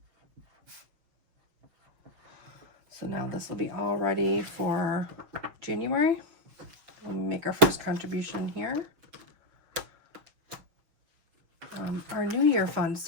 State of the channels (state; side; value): late; left; 6.5 ms